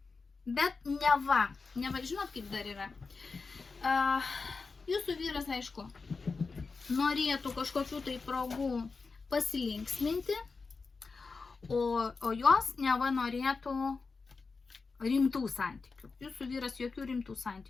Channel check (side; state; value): right; quieter; 4.4 dB